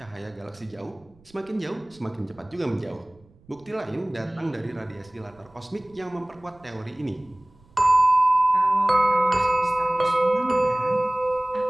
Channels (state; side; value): noise; right; rumble, 29 dB below the sound